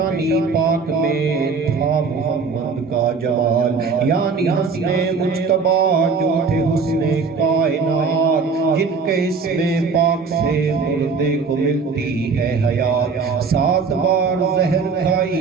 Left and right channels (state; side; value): quieter; left; 4.9 dB